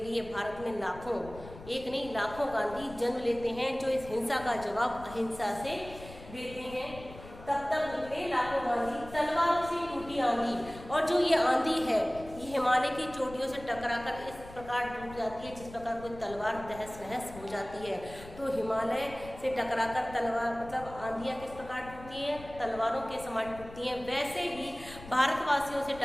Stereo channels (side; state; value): left; noise; rumble, 16 dB below the sound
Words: भारत में लाखों, एक नहीं लाखों गांधी जन्म लेते हैं, जो इस हिंसा का जवाब अहिंसा से देते हैं। तब तक निकले लाखों गांधी, तलवारों से टूटी आंधी। और जो ये आंधी है ये हिमालय की चोटियों से टकराकर इस प्रकार टूट जाती है जिस प्रकार कोई तलवार तहस नहस हो जाती है। तो हिमालय से टकराकर तलवार मतलब आंधियाँ किस प्रकार टूटती हैं, तलवारों के समान टूटती हैं। वैसे ही भारतवासियों से